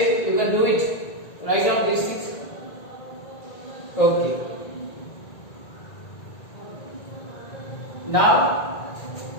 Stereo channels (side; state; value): right; late; 1.9 ms